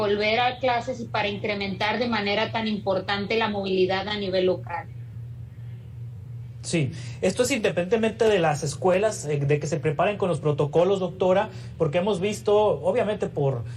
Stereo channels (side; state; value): both; identical; correlation 1.00